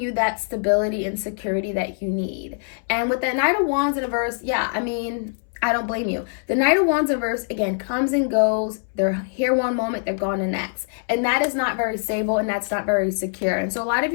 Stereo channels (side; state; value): right; silent; 63 dB below the other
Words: that stability and security that you need. And with that Knight of Wands in reverse, I don't blame you. The Knight of Wands in reverse, again, comes and goes. They're here one moment, they're gone the next. And that is not very stable, and that's not very secure. And so a lot of